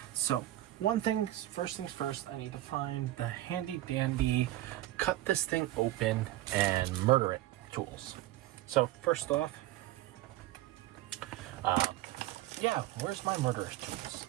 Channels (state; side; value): quieter; left; 15.6 dB